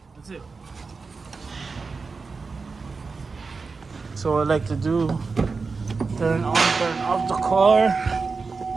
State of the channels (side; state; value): left; quieter; 4.5 dB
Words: That's it. So I like to do turn on, turn off the car,